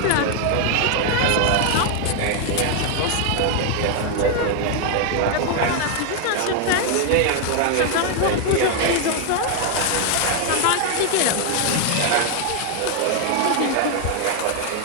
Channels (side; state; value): both; different; correlation 0.00